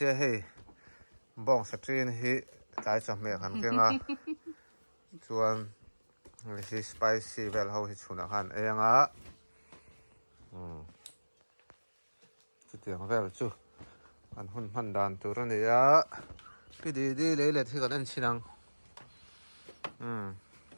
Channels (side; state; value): both; inverted; correlation -1.00